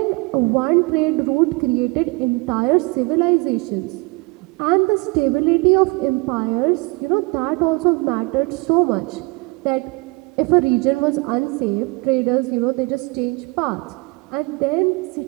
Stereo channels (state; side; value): quieter; left; 27.1 dB